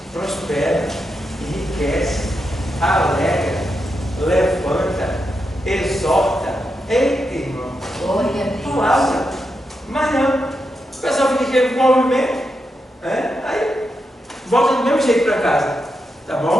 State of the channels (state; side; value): normal; both; correlation 0.85